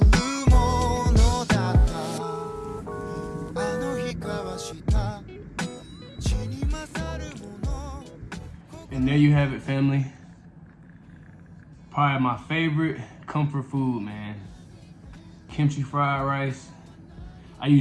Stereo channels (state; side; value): identical; both; correlation 1.00